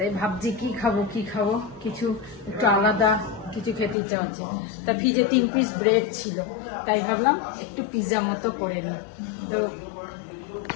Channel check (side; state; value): right; drops out; at 4.0 s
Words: ভাবছি কি খাবো কিছু একটু আলাদা কিছু খেতে ইচ্ছা হচ্ছে। তা ফ্রিজে 3 পিস ব্রেড ছিল, তাই ভাবলাম একটু পিৎজা মতো করে নিই। তো